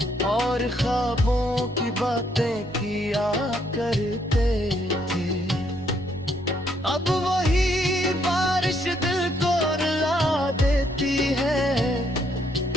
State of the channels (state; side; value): normal; both; correlation 0.71